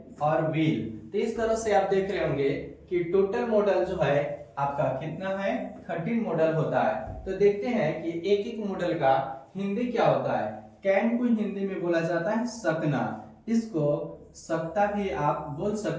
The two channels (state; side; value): identical; both; correlation 1.00